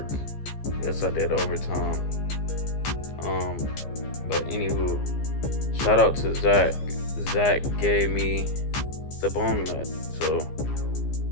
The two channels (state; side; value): late; right; 15 ms